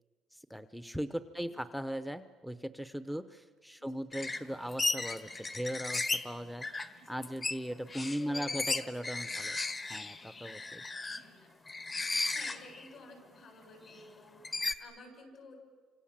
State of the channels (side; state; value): both; normal; correlation 0.95